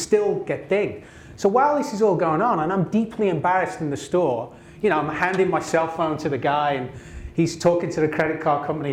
get dinged. So while this is all going on and I'm deeply embarrassed in the store, you know, I'm handing my cell phone to the guy and he's talking to the credit card company,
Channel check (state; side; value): identical; both; correlation 1.00